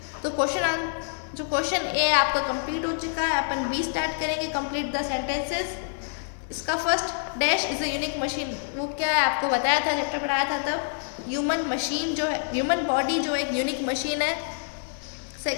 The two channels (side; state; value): right; silent; digital silence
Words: तो क्वेश्चन ए आपका कंप्लीट हो चुका है। अपन बी स्टार्ट करेंगे, कंप्लीट द सेंटेंसेस। इसका first dash is a unique machine. वो क्या है आपको बताया था, चैप्टर पढ़ाया था तब। ह्यूमन मशीन जो है, ह्यूमन बॉडी जो एक यूनिक मशीन है।